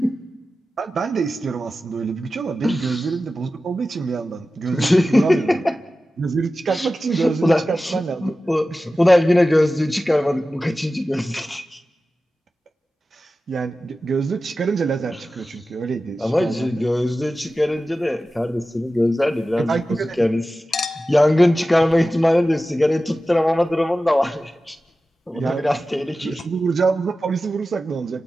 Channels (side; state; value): both; normal; correlation 0.94